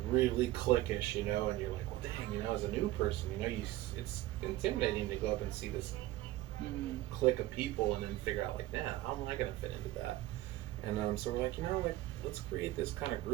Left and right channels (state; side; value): quieter; left; 16.4 dB